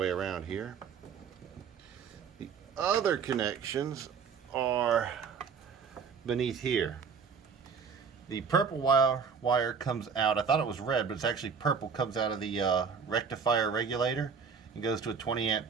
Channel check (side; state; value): left; quieter; 6.1 dB